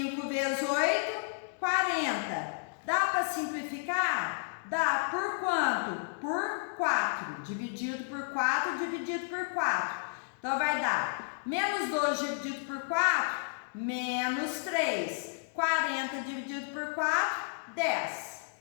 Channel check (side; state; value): right; silent; digital silence